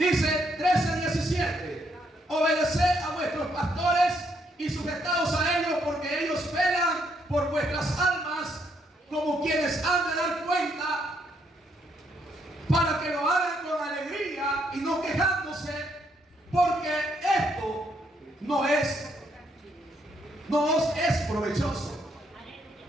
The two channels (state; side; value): normal; both; correlation 0.73